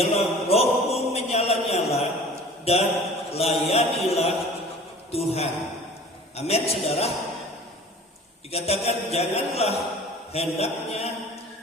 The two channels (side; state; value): both; normal; correlation 0.44